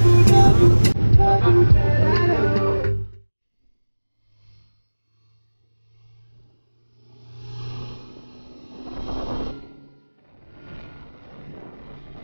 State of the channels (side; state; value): both; inverted; correlation -1.00